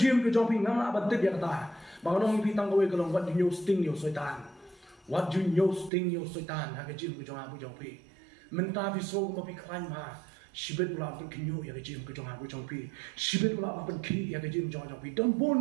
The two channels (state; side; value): drops out; left; at 5.9 s